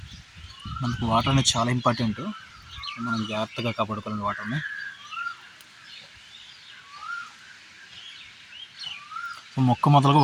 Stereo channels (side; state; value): both; identical; correlation 1.00